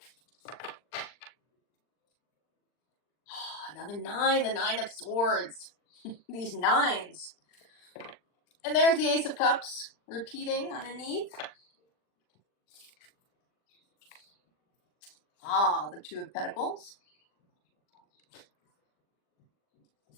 Another nine, the Nine of Swords. These nines. And there's the Ace of Cups repeating underneath. Ah, the Two of Pentacles.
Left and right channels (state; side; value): late; right; 40 ms